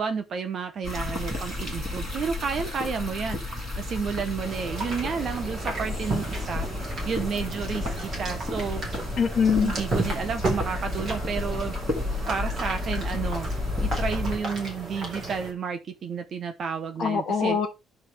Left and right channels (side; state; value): both; normal; correlation 0.70